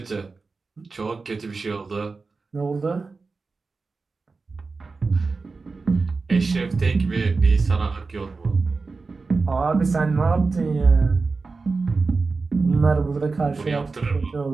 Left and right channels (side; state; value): left; quieter; 4.1 dB